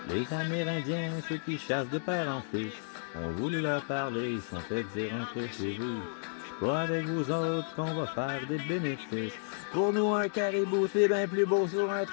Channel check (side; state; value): right; silent; digital silence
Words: Les Amérindiens, ceux qui chassent de père en fils, ont voulu leur parler, ils sont fait dire un peu chez vous. C'est pas avec vous autres qu'on va faire des bénéfices. Pour nous, un caribou, c'est bien plus beau sur un